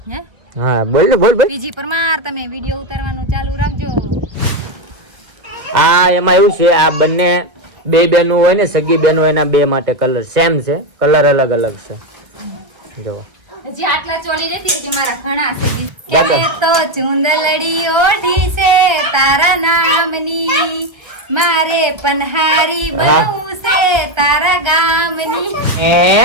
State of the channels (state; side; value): late; left; 1.5 ms